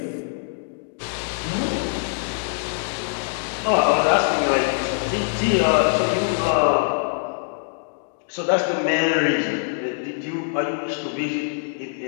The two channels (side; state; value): right; silent; digital silence